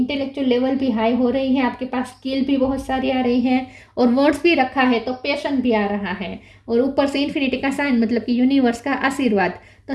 लेवल भी हाई हो रही है। आपके पास स्किल भी बहुत सारी आ रही है। और वर्ड्स भी रखा है तो पैशन भी आ रहा है। और ऊपर से इन्फिनिटी का साइन, मतलब कि यूनिवर्स का आशीर्वाद।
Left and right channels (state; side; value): identical; both; correlation 1.00